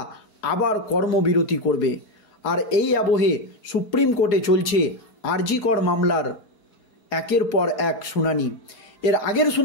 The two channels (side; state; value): right; late; 4.8 ms